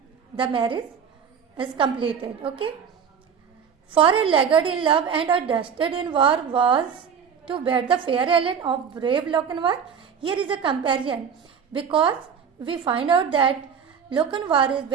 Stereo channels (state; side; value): quieter; left; 7.1 dB